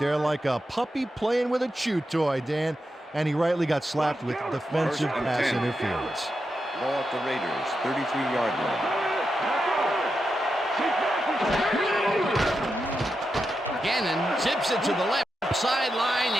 like a puppy playing with a chew toy, Dan. And he rightly got slapped with defensive pass interference. Ball at the Raiders, 33-yard line. Gannon zips it to the left sideline,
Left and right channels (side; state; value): both; normal; correlation 0.87